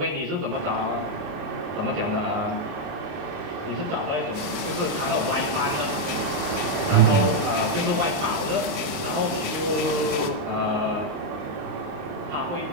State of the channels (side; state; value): left; late; 28 ms